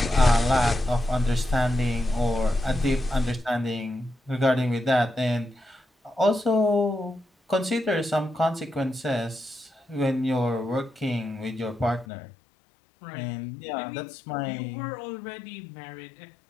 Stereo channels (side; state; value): right; drops out; at 12.1 s